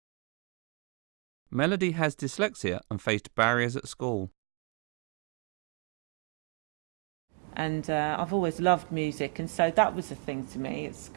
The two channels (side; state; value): left; quieter; 32.6 dB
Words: Melodie has dyslexia and faced barriers at school. And I've always loved music, and so that was a thing to me at